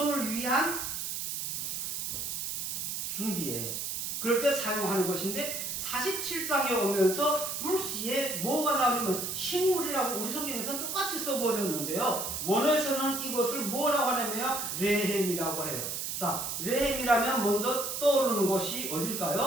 위한 준비예요. 그럴 때 사용하는 것인데 47장에 오면서 불시에 뭐가 나오냐면 식물이라고 우리 성경에서는 똑같이 써버렸는데요. 원어에서는 이것을 뭐라고 하냐면 레헴이라고 해요. 자, 레헴이라면 먼저 떠오르는 것이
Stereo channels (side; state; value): right; noise; hiss, 3 dB below the sound